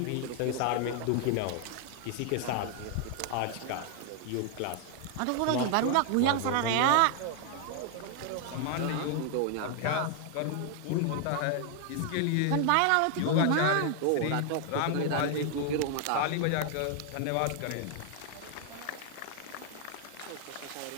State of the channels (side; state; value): both; different; correlation 0.00